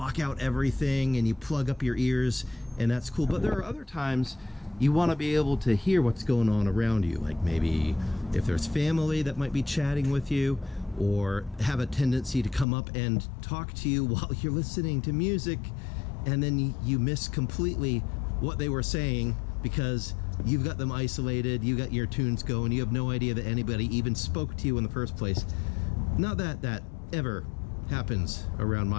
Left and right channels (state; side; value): drops out; right; at 12.7 s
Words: out everything, and you plug up your ears, and that's cool. But there are other times you want to be able to hear what's going on around you, like maybe if there's family that might be chatting with you, or have a tendency to come up and talk to you while you're listening to music, and then you miss completely what they were saying because you've got them isolated, you got your tunes going, you have no idea that anybody even spoke to you in the first place. Not that that ever happens around